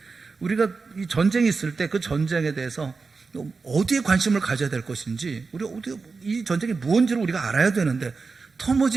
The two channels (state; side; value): quieter; left; 4.5 dB